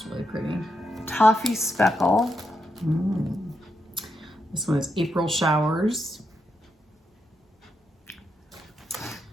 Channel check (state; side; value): normal; both; correlation 0.83